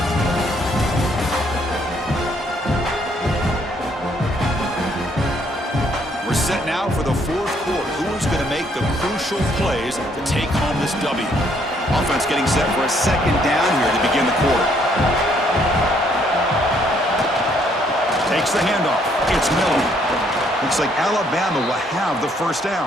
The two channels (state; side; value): normal; both; correlation 0.68